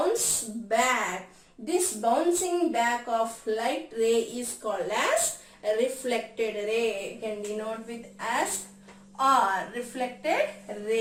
back. This bouncing back of light ray is called as reflected ray. You can denote with as R, reflected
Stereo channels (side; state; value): both; identical; correlation 1.00